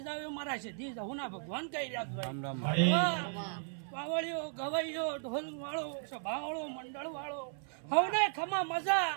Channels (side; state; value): left; silent; 54 dB below the other